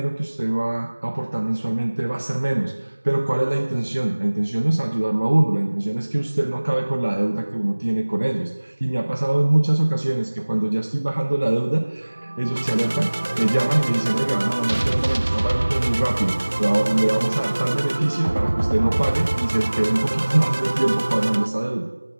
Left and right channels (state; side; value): inverted; both; correlation -1.00